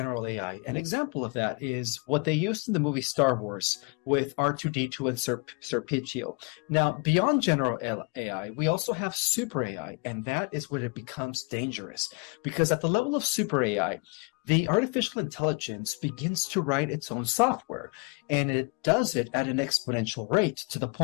AI. An example of that is what they used in the movie Star Wars with R2-D2 and Serpentio. Now, beyond general AI, we also have super AI, and that is when it becomes dangerous. Because at the level of super AI, the artificial intelligence begins to write its own software, and it does it at an exponential rate to the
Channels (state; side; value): quieter; right; 31.9 dB